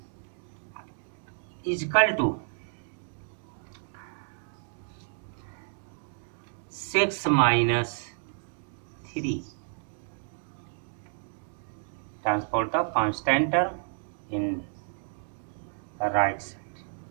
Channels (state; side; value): silent; left; 57 dB below the other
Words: is equal to 6 minus 3. Transport the constant term in the right side.